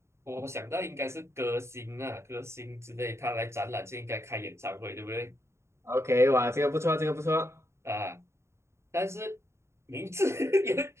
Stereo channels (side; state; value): left; late; 0.13 ms